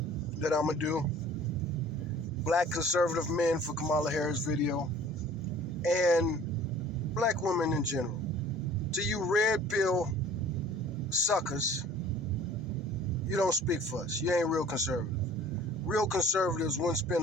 that I'm going to do. Black conservative men for Kamala Harris video. And black women in general. To you red pill suckers, you don't speak for us. You ain't real conservative. Real conservatives wouldn't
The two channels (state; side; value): normal; both; correlation 0.48